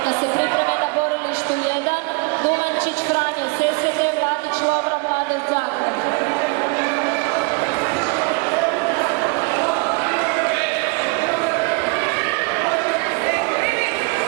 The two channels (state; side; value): quieter; left; 30.6 dB